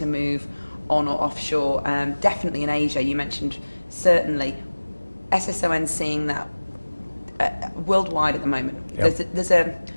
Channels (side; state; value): both; inverted; correlation -1.00